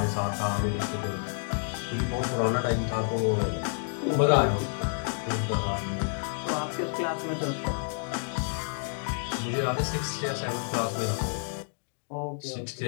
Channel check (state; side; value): silent; right; digital silence